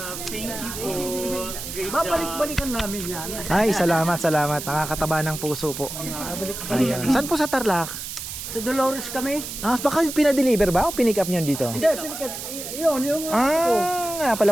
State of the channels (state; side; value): noise; right; hiss, 8 dB below the sound